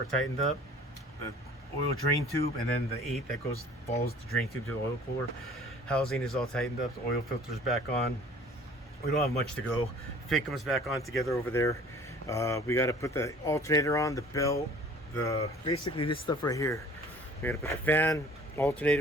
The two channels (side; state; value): both; normal; correlation 0.50